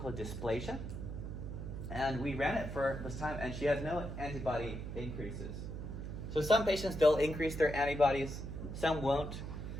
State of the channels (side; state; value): right; noise; hum, 6 dB below the sound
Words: dysplasia. And we ran it for this time, and she has no antibody increases. So some patients, they'll increase their antibodies, some won't.